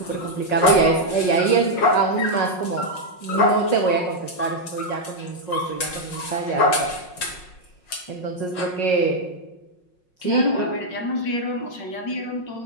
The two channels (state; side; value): late; right; 5.5 ms